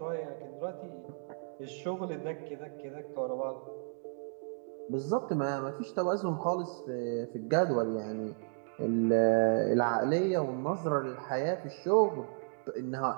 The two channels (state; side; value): silent; left; 56 dB below the other